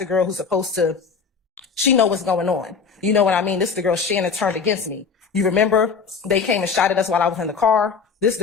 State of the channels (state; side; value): quieter; right; 5.5 dB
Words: girl who's supposed to, she know what's going on. You know what I mean? This is the girl Shannon turned against me. You remember they came and shot at us while I was in the car? This is